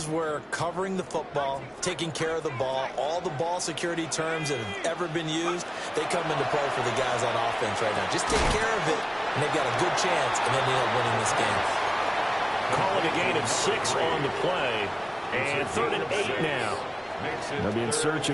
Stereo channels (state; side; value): identical; both; correlation 1.00